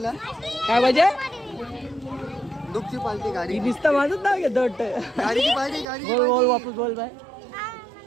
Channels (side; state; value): left; drops out; at 5.9 s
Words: काय पाहिजे? दुःखची पार्टी गाडी दिसतं माझंच नाव घेतो वाटतं. गाडीची पाहिजे. गाडी बोल वापस बोल बाय.